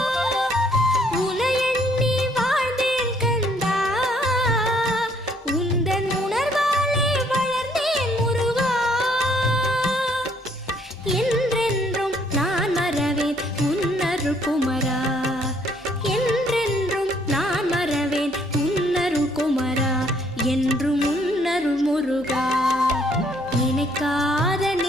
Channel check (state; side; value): normal; both; correlation 0.65